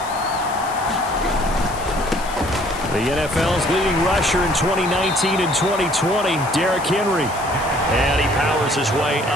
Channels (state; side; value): noise; left; hiss, 15 dB below the sound